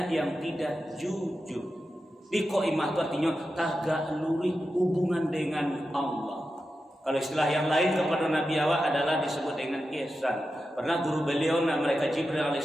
yang tidak jujur. Di qoimah itu artinya tagak lurih hubungan dengan Allah. Kalau istilah yang lain kepada Nabi awak adalah disebut dengan ihsan. Pernah guru beliau mereka Jibril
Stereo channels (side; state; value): both; normal; correlation 0.90